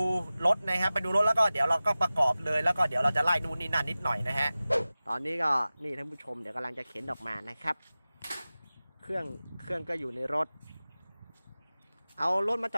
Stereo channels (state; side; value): inverted; both; correlation -0.97